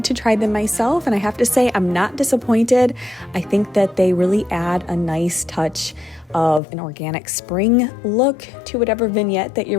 to try them myself, and I have to say I'm not disappointed. I think that they really add a nice touch of an organic spring look to whatever vignette that you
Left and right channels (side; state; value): right; drops out; at 6.6 s